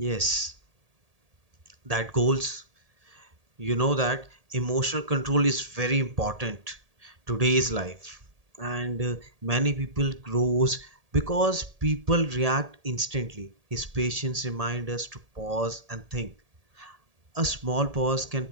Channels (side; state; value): left; late; 1.8 ms